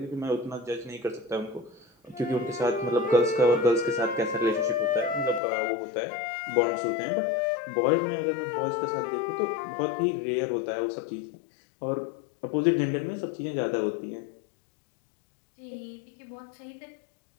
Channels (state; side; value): drops out; right; at 5.4 s